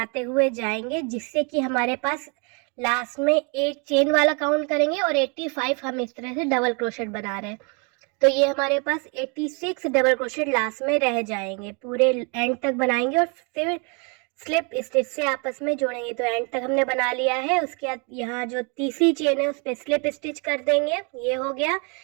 हुए जाएंगे, जिससे कि हमारे पास लास्ट में एक चेन वाला काउंट करेंगे और 85 हम इस तरह से डबल क्रोशेट बना रहे हैं। तो ये हमारे पास 86 डबल क्रोशेट लास्ट में रह जाएंगे। पूरे एंड तक बनाएंगे और फिर स्लिप स्टिच से आपस में जोड़ेंगे। तो एंड तक हमने बना लिया है। उसके बाद यहाँ जो तीसरी चेन है उस पर स्लिप स्टिच कर देंगे। ये हो गया।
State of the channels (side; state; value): left; quieter; 34.4 dB